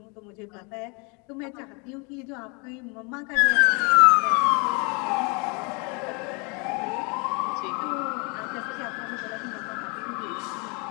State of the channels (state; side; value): quieter; right; 31.8 dB